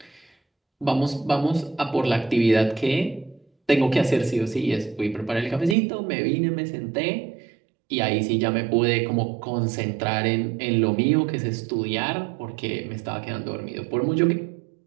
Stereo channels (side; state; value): left; drops out; at 5.8 s